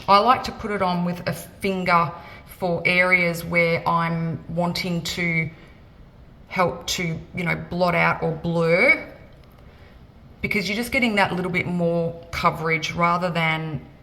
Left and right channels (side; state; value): both; identical; correlation 1.00